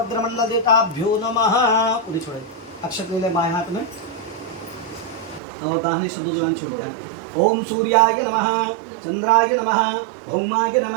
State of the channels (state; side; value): drops out; left; at 5.4 s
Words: देवताभ्यो नमः। पूरी छोड़े अक्षत ले बाएं हाथ में और दाहिने से दूसरा छोड़ता है। ओम सूर्याय नमः चंद्राय नमः भौमाय